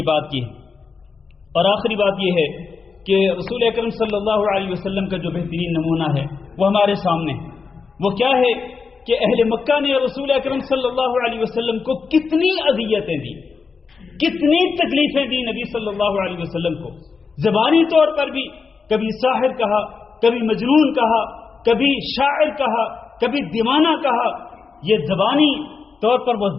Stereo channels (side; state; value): right; quieter; 5.1 dB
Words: بات کی۔ اور آخری بات یہ ہے کہ رسول اکرم صلی اللہ علیہ وسلم کا جو بہترین نمونہ ہے وہ ہمارے سامنے ہے۔ وہ کیا ہے کہ اہل مکہ نے رسول اکرم صلی اللہ علیہ وسلم کو کتنی اذیتیں دی، کتنی تکلیفیں دی نبی صلی اللہ علیہ وسلم کو، زبانی طور پر بھی، کبھی ساحر کہا، کبھی مجنون کہا، کبھی شاعر کہا، کبھی دیوانہ کہا، یہ زبانی طور پر وہ